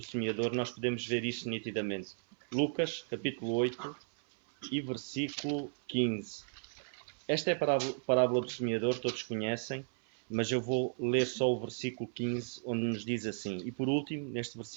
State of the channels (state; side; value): silent; left; 55 dB below the other